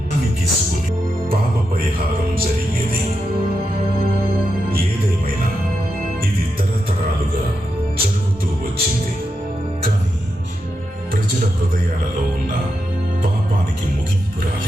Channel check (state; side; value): normal; both; correlation 0.86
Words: గిసుకుని పాప పరిహారం జరిగేది. ఏదేమైనా ఇది తరతరాలుగా జరుగుతూ వచ్చింది. కానీ ప్రజల హృదయాలలో ఉన్న పాపానికి ముగింపు